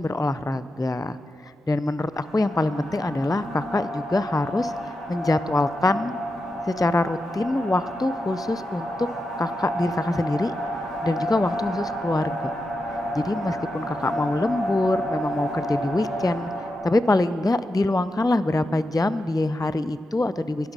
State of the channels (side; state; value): both; normal; correlation 0.89